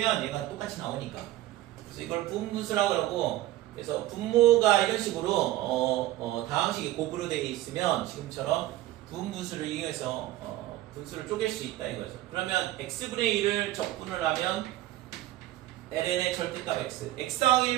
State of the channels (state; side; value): quieter; left; 15.3 dB